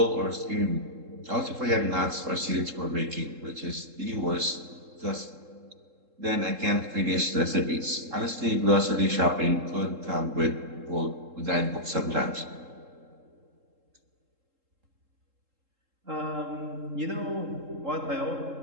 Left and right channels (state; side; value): late; left; 3.7 ms